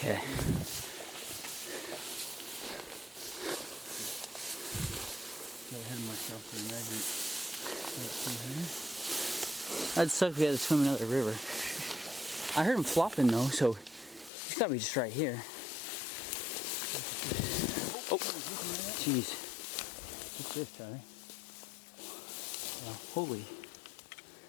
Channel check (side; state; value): right; drops out; at 14.3 s